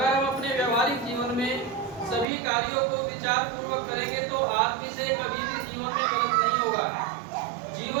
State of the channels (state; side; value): drops out; left; at 2.2 s